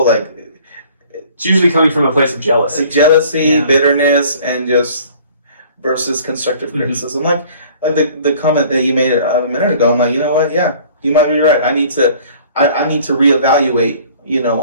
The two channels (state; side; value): inverted; both; correlation -0.52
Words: like it's usually coming from a place of jealousy, bitterness, and just versus constructive criticism. Like the comment that you made a minute ago. I'm like, you know what? Yeah, you might be right. I need to reevaluate.